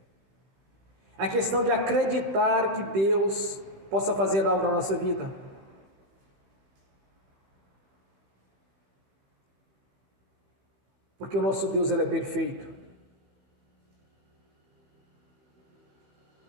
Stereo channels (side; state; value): left; late; 15 ms